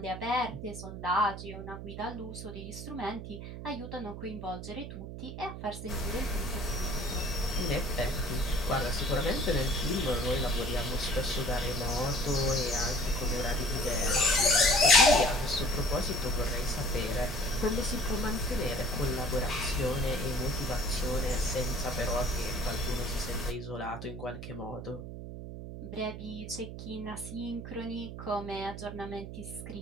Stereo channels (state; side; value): noise; right; hum, 9 dB below the sound